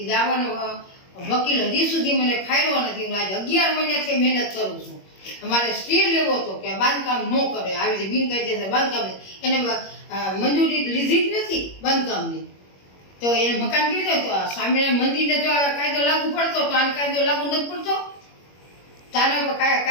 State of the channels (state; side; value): late; right; 21 ms